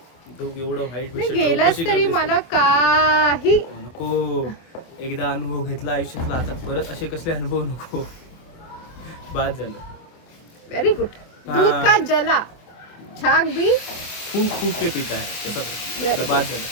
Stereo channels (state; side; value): late; right; 24 ms